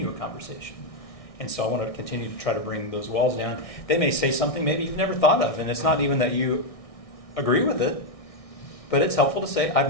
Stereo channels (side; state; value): right; late; 1.6 ms